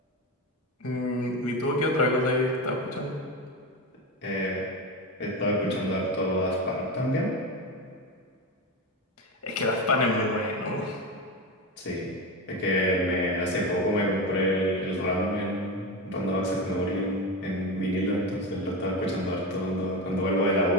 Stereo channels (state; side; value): normal; both; correlation 0.19